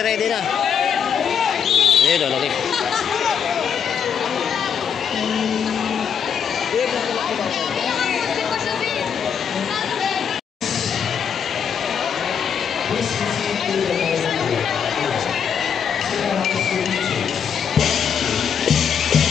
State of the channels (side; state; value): right; quieter; 7.4 dB